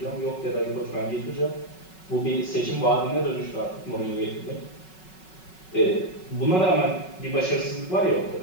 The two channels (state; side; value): late; right; 5.4 ms